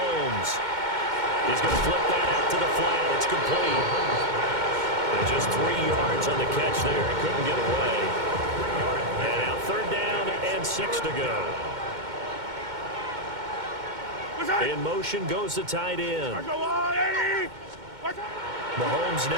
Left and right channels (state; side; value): late; left; 2.2 ms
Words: He's going to flip that out to the flat. It's complete. And just 3 yards on the catch there. He couldn't get away. And now 3rd down and 6 to go. In motion goes the tight end. Mahomes